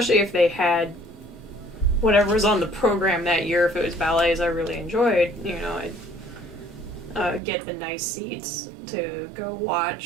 if they had whatever was on the program that year. If it was ballets I really enjoyed, I'd get the nice seats to go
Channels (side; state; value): left; drops out; at 7.4 s